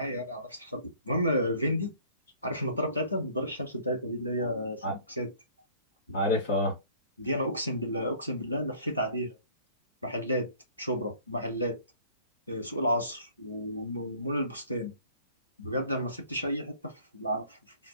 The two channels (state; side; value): inverted; both; correlation -0.53